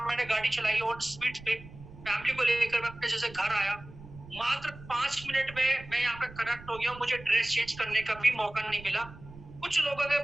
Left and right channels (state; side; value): noise; right; rumble, 18 dB below the sound